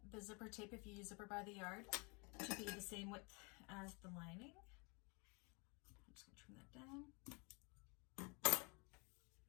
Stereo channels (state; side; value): quieter; right; 31.0 dB